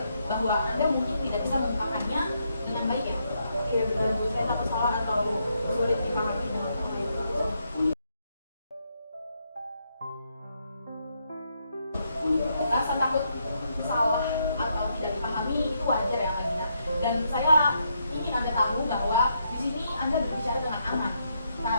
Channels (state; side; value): inverted; both; correlation -0.78